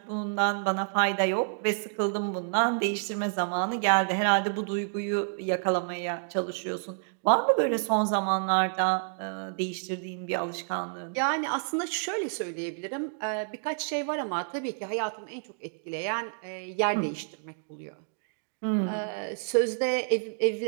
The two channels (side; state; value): left; silent; digital silence